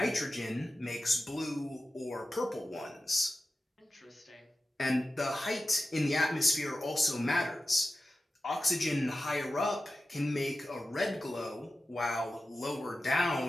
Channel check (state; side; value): normal; both; correlation 0.93